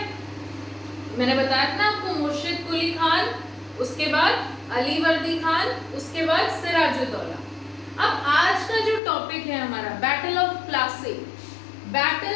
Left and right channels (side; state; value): right; drops out; at 9.0 s